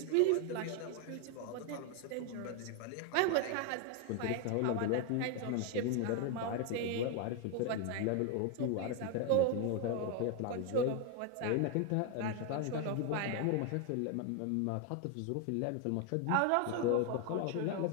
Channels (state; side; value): different; both; correlation 0.01